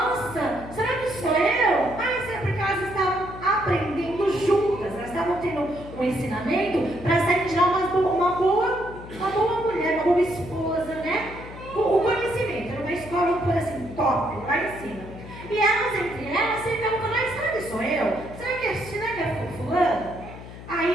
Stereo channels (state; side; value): noise; left; hum, 14 dB below the sound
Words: será que sou eu? Será porque elas estavam aprendendo juntas, elas estavam tendo um ensinamento para serem já uma boa mulher, uma boa esposa, né? O conhecimento, era uma escola, por assim, top, lá em cima. E elas, entre elas, ficavam falando: será que sou eu? Será que é fulano?